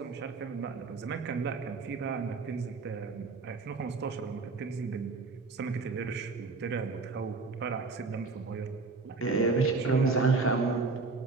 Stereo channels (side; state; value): left; quieter; 4.1 dB